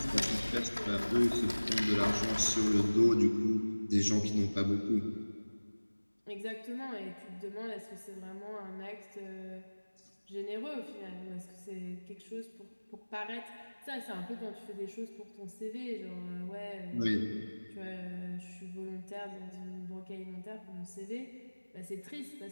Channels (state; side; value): inverted; both; correlation -1.00